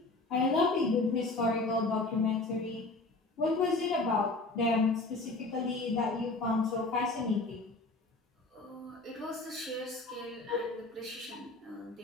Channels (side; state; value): right; quieter; 3.2 dB